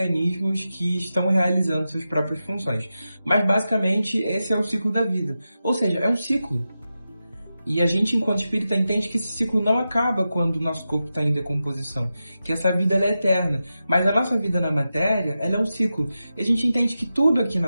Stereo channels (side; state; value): both; inverted; correlation -0.91